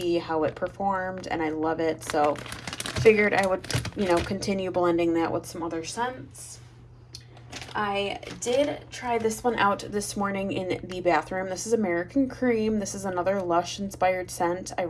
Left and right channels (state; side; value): identical; both; correlation 1.00